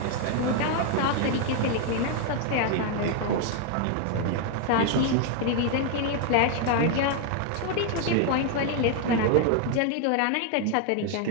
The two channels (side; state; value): both; different; correlation 0.00